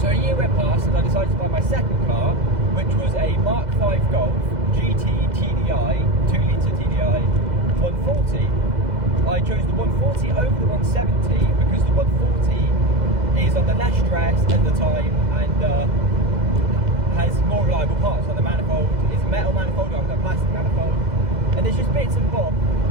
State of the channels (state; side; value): late; left; 2.0 ms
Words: a year went past and I decided to buy my second car, which was a Mark V Golf GT TDI, 2 litre TDI 140. I chose the 140 over the 170 because the 140 is under less stress at the time and has more reliable parts. Like the manifold is a metal manifold rather than a plastic manifold, and there's just bits and bobs